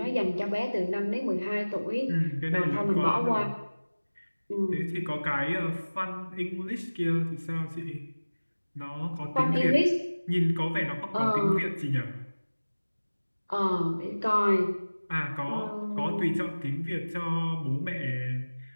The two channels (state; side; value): inverted; both; correlation -1.00